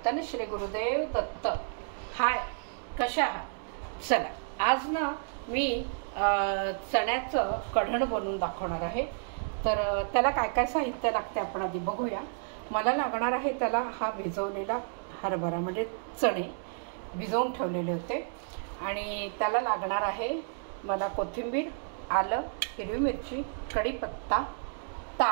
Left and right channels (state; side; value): silent; left; digital silence